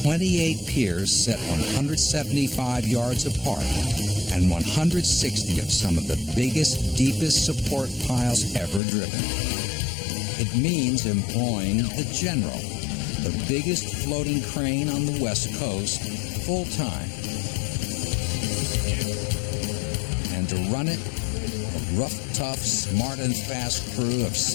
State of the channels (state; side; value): drops out; right; at 8.8 s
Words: 28 piers set 175 yards apart and 160 of some of the biggest, deepest support piles ever driven. It means employing the General, the biggest floating crane on the West Coast, full-time. And to run it, a rough, tough, smart, and fast crew of